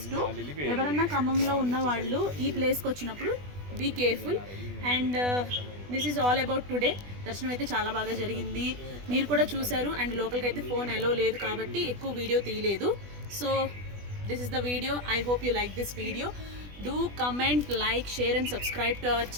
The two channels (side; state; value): left; late; 20 ms